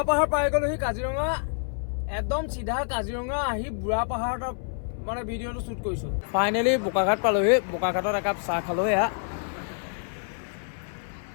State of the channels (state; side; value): silent; right; 60 dB below the other